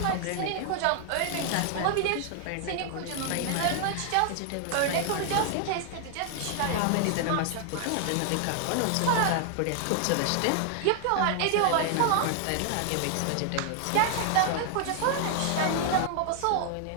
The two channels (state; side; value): different; both; correlation 0.00